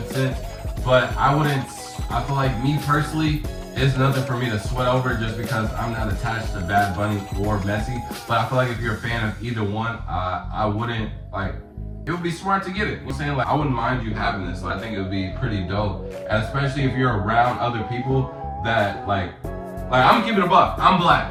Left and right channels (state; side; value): identical; both; correlation 1.00